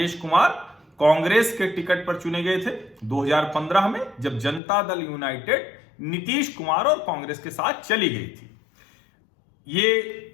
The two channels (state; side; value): drops out; right; at 4.6 s